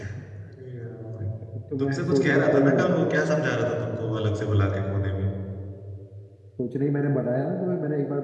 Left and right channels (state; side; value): identical; both; correlation 1.00